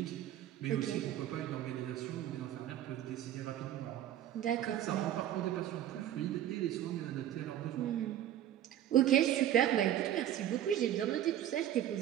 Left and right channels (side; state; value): left; quieter; 11.5 dB